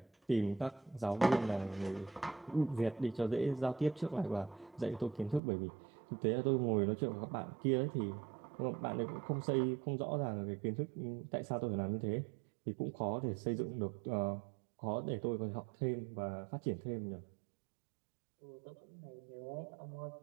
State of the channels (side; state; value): left; drops out; at 5.4 s